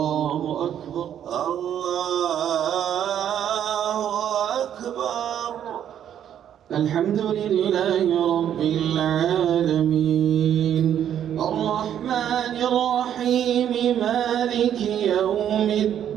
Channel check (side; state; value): left; quieter; 9.9 dB